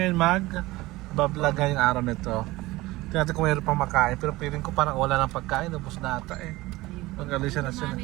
bablaga yung araw nito. Tingnan natin kung mayroon pang makain. Pero feeling ko parang wala ng pagkain. Ubus na ata eh. Mag-alisa na sila.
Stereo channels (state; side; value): quieter; left; 19.4 dB